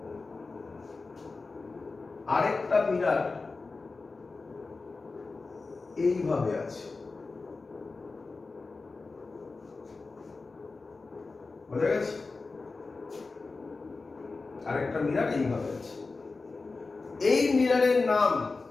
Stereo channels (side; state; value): right; quieter; 3.9 dB